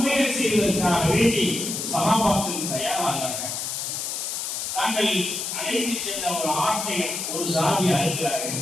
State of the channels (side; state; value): left; noise; hiss, 3 dB below the sound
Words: செய்வதற்காக வேண்டி சஹாபாக்கள் தயாராகிறார்கள். தாங்கள் அழைத்து சென்ற ஒரு ஆட்டை ஒரு சாமி அறுக்கிறார்கள்,